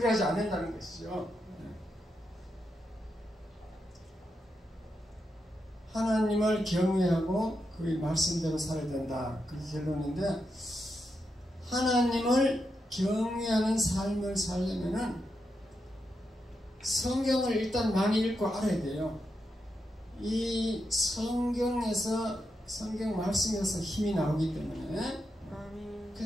않는다는 것이죠. 하나님을 경외하고 그의 말씀대로 살아야 된다. 그게 결론인데, 하나님을 경외하는 삶을 살려면은 성경을 일단 많이 읽고 알아야 돼요. 이 성경에서, 성경 말씀에서 힘이 나오기 때문에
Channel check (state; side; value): normal; both; correlation 0.85